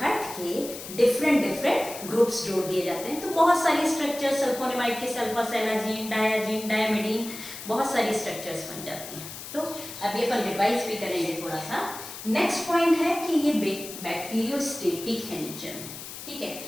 हट के डिफरेंट डिफरेंट ग्रुप्स जोड़ दिए जाते हैं। तो बहुत सारी स्ट्रक्चर सल्फोनेमाइड के, सल्फासेलाजीन, डायाजीन, डायमिडीन, बहुत सारी स्ट्रक्चर्स बन जाती हैं। तो अब ये अपन रिवाइज भी करेंगे थोड़ा सा। नेक्स्ट पॉइंट है कि ये बैक्टीरियोस्टेटिक है नेचर में, ठीक है।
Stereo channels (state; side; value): noise; left; hiss, 11 dB below the sound